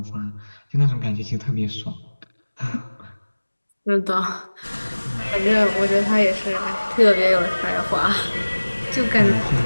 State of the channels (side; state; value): both; inverted; correlation -1.00